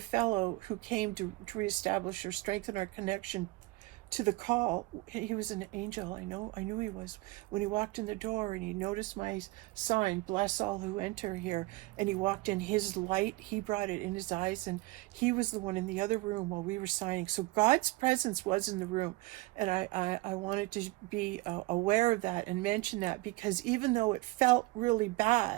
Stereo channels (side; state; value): left; quieter; 22.0 dB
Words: fellow who came to reestablish or strengthen our connection to the call, he was an angel. I knew he was. When he walked in the door and he noticed my sign, bless all who enter here, and he walked in, his light, he brought it in his eyes, and he was the one in the other room while we were signing. So God's presence was in the room, and I wanted to be aware of that and mention that, because even though it felt really